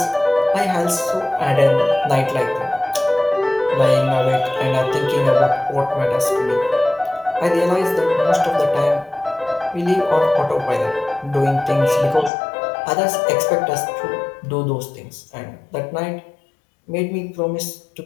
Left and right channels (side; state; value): right; drops out; at 12.3 s